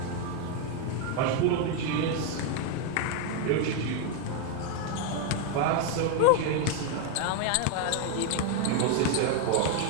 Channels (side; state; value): both; different; correlation 0.01